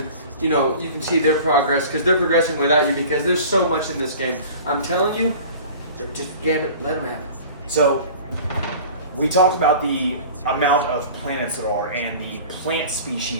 you can see their progress because they're progressing without you because there's so much in this game. I'm telling you, just Gambit, let them have it. So we talked about the amount of planets there are and the plant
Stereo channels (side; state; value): both; inverted; correlation -0.42